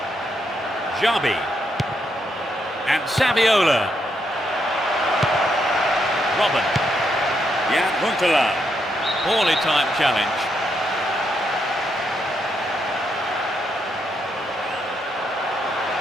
Jabi. And Saviola. Robin. Jan Huntelaar. Poorly timed challenge.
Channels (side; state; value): both; normal; correlation 0.78